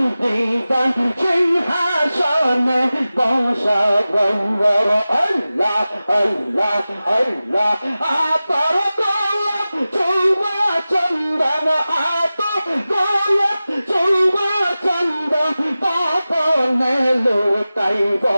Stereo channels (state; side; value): inverted; both; correlation -0.96